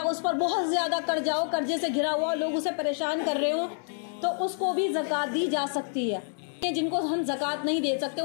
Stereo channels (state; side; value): silent; right; digital silence